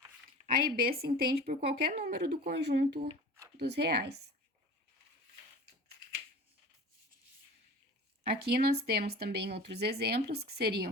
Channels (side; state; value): both; normal; correlation 0.38